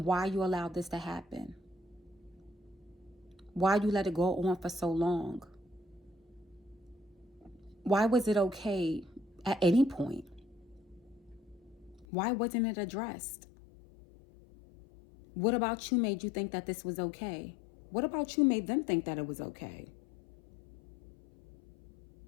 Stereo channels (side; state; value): right; drops out; at 12.1 s